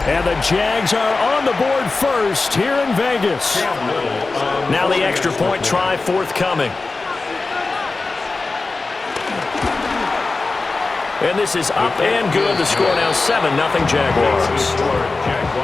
And the Jags are on the board first here in Vegas. Now the extra point try forthcoming. And this is up and good. The score now 7-0 Jaguars.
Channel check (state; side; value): quieter; right; 3.7 dB